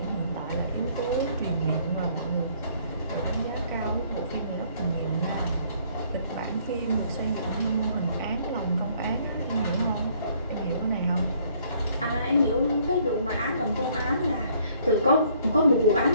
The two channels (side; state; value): both; inverted; correlation -0.63